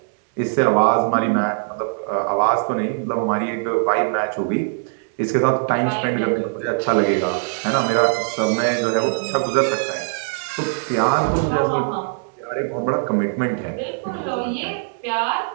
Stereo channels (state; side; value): silent; left; digital silence